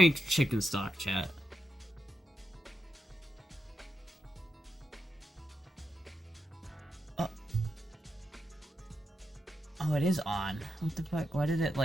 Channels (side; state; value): both; normal; correlation 0.87